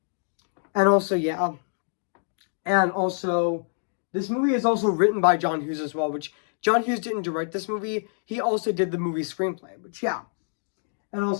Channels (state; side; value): silent; right; digital silence